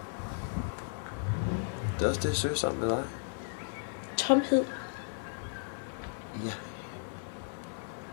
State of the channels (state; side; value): silent; right; 55 dB below the other